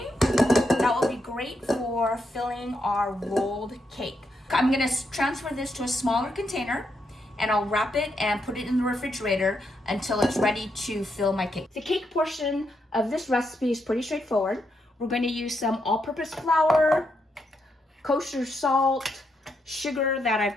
that will be great for filling our rolled cake. I'm gonna transfer this to a smaller container and I'll wrap it and put it in the refrigerator until it's ready to fill my cake. The cake portion of this recipe is pretty straightforward. We're going to use some all-purpose flour, kosher salt, sugar that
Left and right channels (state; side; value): normal; both; correlation 0.81